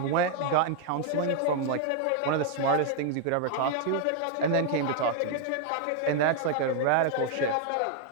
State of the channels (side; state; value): both; different; correlation 0.00